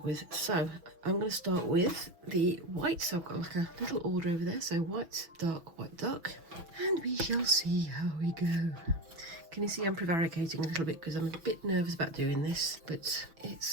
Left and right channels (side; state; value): left; late; 6.1 ms